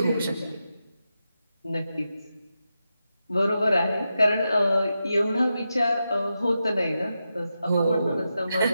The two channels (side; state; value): both; inverted; correlation -0.89